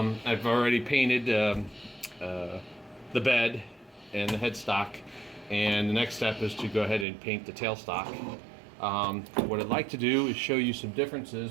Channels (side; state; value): left; drops out; at 7.1 s